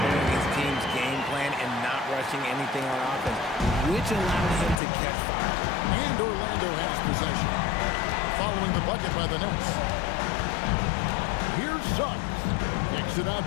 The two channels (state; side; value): drops out; right; at 4.8 s